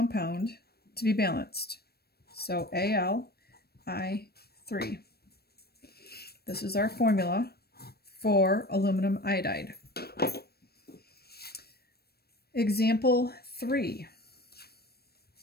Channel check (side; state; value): right; late; 0.46 ms